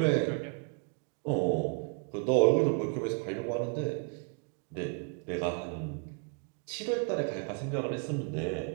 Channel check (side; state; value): left; quieter; 37.5 dB